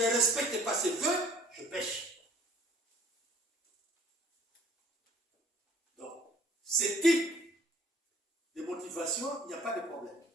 pas ce vœu, je pêche. Donc, ce type de motivation, il n'y a pas de problème.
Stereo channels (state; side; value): normal; both; correlation 0.54